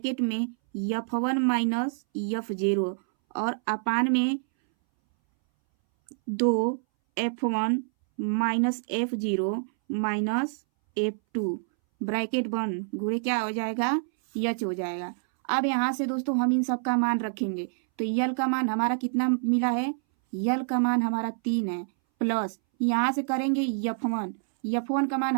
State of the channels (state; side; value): silent; left; 60 dB below the other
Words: में F1 माइनस F0 और अपान में 2 F1 minus F0 minus F2 bracket बंद, गुणे क्या हो जाएगा? यच हो जाएगा। अब यहाँ से दोस्तों हम इन सब का मान रखेंगे। तो यल का मान हमारा कितना मिला है? यल का मान हमारा 3 है। प्लस यहाँ से करेंगे F1 का मान